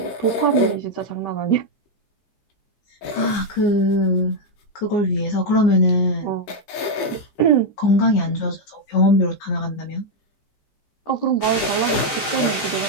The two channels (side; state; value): right; late; 14 ms